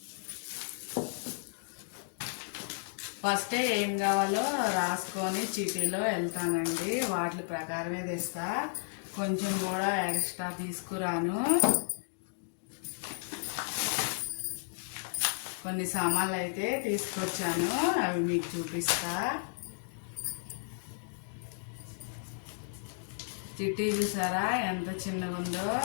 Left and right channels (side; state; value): right; silent; digital silence